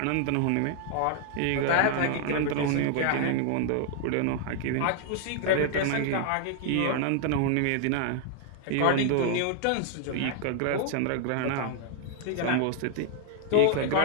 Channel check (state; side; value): different; both; correlation 0.00